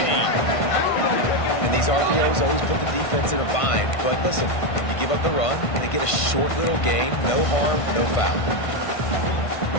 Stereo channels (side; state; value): right; late; 1.5 ms